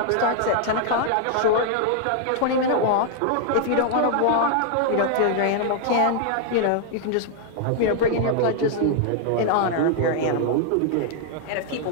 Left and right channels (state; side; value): different; both; correlation -0.01